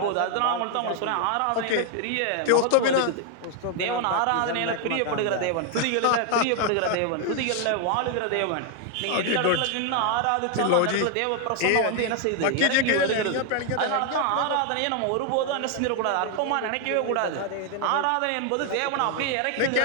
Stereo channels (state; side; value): different; both; correlation 0.00